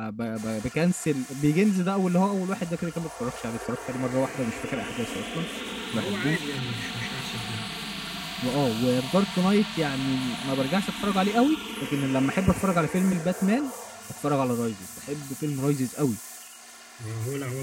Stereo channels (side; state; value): both; identical; correlation 1.00